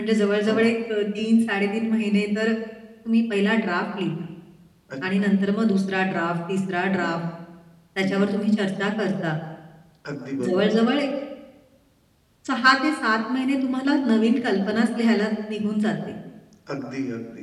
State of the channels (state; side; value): identical; both; correlation 1.00